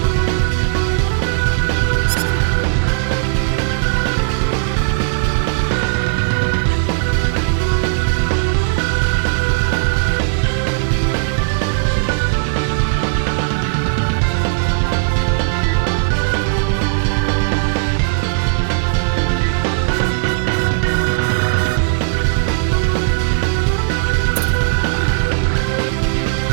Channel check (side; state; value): left; silent; digital silence